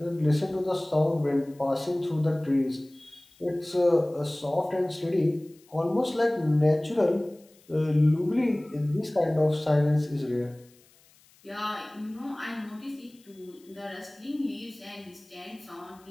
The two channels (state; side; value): noise; left; hiss, 29 dB below the sound